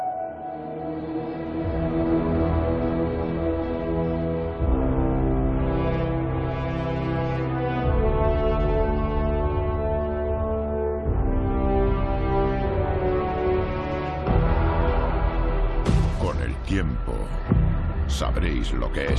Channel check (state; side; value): identical; both; correlation 1.00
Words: Con el tiempo, sabréis lo que